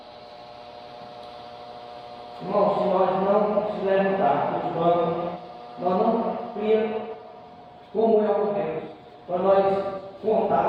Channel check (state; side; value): identical; both; correlation 1.00